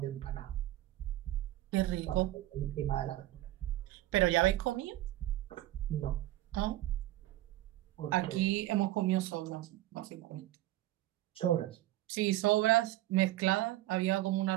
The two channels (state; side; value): quieter; left; 15.5 dB